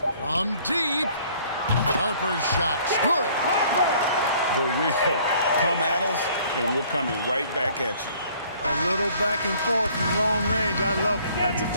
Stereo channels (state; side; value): inverted; both; correlation -0.58